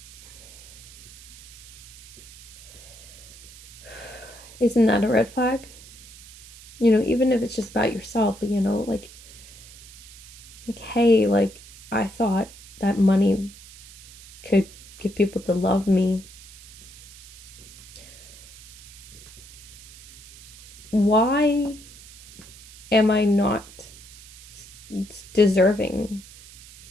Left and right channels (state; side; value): noise; right; hiss, 19 dB below the sound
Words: isn't that a red flag? Even if it's just about yourself, like, hey, like, I thought that money could get people to love me. Why am I not deserving